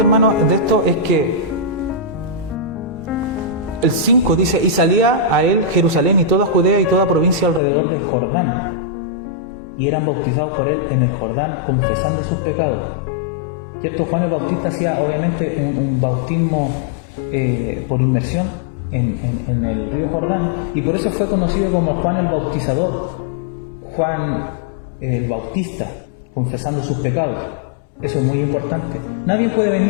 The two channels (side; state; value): right; drops out; at 7.6 s